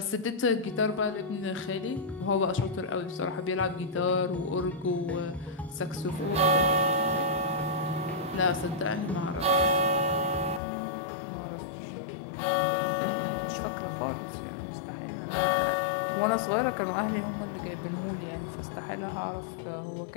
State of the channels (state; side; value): drops out; right; at 10.6 s